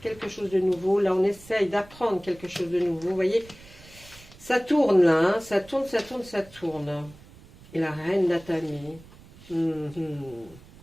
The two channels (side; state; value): right; noise; rumble, 22 dB below the sound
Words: quelque chose de nouveau. Là, on essaye d'apprendre quelque chose de nouveau. Vous voyez, ça tourne là, hein, ça tourne. Et la reine d'Atami.